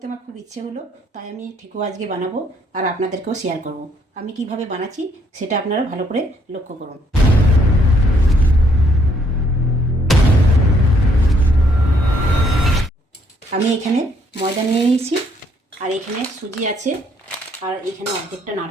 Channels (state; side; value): normal; both; correlation 0.68